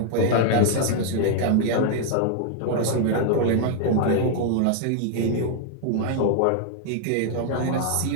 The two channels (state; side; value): different; both; correlation 0.00